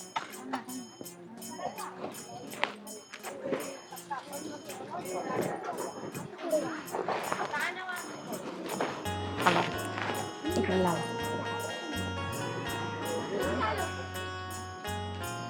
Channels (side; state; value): both; identical; correlation 1.00